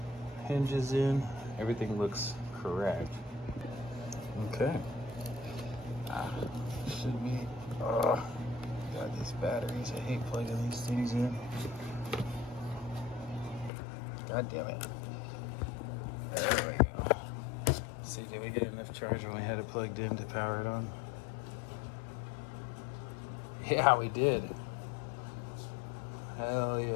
hinges in. Everything looks correct. Okay. Should be. God, these batteries. I hate plugging these things in. God damn it. There we go. See, did we get enough charge when we had it plugged in to power it on? Yeah, we did. Hell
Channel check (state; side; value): drops out; right; at 13.7 s